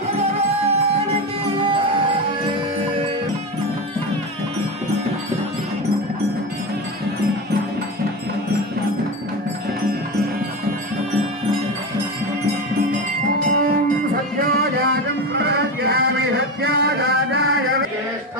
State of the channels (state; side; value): normal; both; correlation 0.20